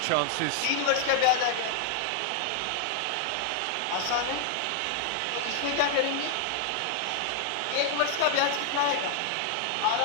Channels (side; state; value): both; different; correlation 0.00